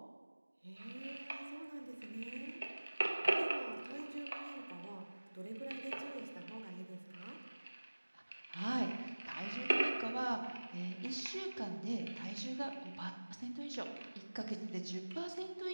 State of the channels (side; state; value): both; inverted; correlation -1.00